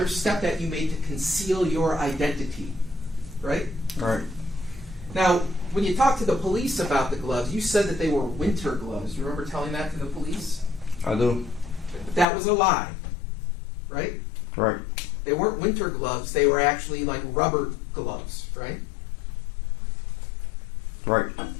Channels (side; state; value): right; drops out; at 12.2 s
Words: step that you made to conceal your identity, right? Right. Now, when you talked to the police about the gloves, you said that they were winter gloves. You remember telling that to the police? I do. But that was a lie, right? Right. They weren't winter gloves. They were actually like rubber gloves, right? Right.